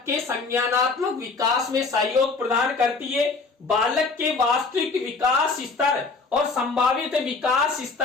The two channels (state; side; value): quieter; right; 4.2 dB